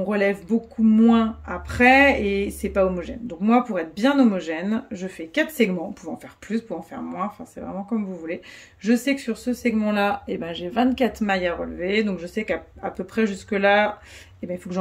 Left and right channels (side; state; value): both; identical; correlation 1.00